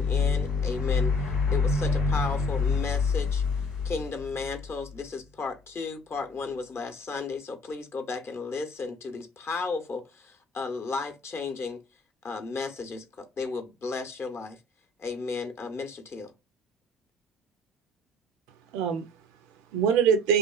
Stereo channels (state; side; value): normal; both; correlation 0.53